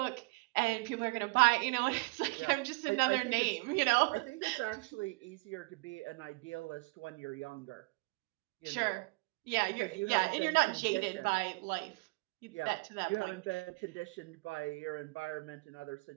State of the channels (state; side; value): quieter; left; 28.7 dB